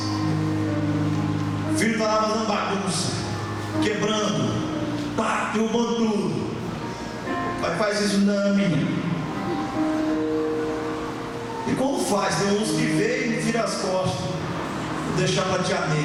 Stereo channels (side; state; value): both; identical; correlation 1.00